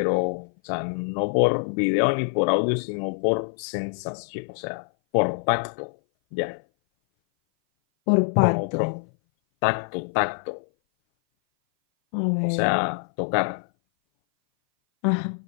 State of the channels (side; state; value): right; silent; 57 dB below the other